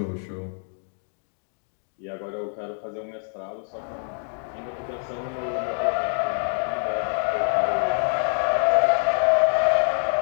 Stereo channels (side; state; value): right; silent; 61 dB below the other